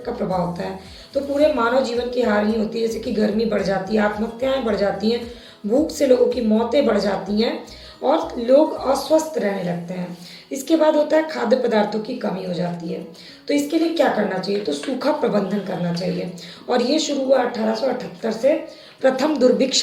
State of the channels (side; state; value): both; identical; correlation 1.00